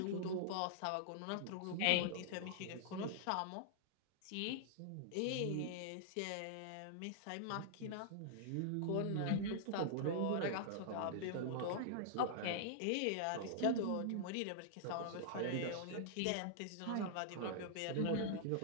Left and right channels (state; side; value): different; both; correlation -0.01